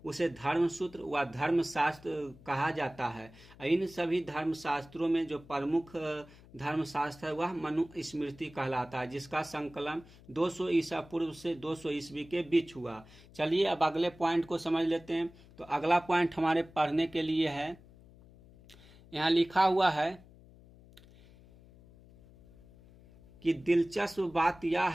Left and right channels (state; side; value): noise; left; hum, 23 dB below the sound